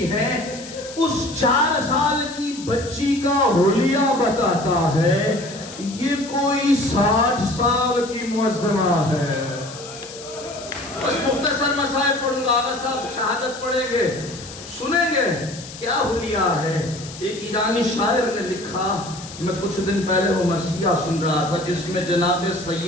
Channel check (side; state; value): left; noise; hiss, 14 dB below the sound